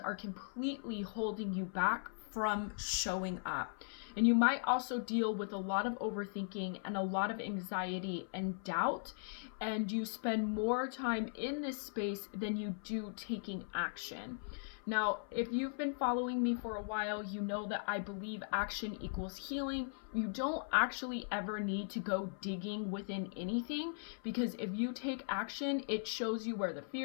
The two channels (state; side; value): silent; right; 52 dB below the other